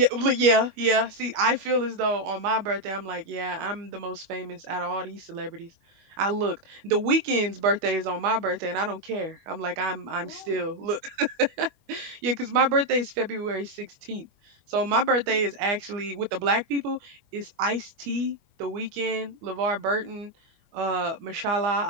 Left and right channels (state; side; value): late; left; 21 ms